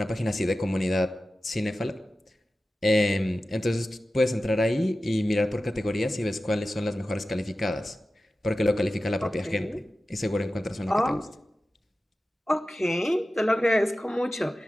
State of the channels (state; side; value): normal; both; correlation 0.94